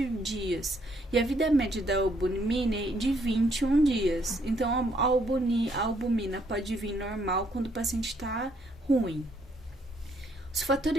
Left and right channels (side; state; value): both; normal; correlation 0.69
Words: dias. E a vida média da albumina é de 21 dias. Então, a albumina pode vir normal quando o paciente está ruim. Os